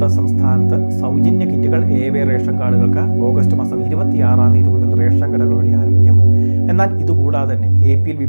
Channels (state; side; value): inverted; both; correlation -1.00